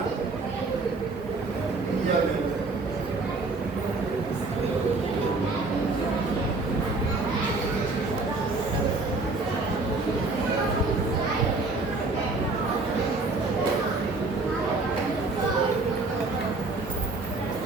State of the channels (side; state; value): left; quieter; 3.5 dB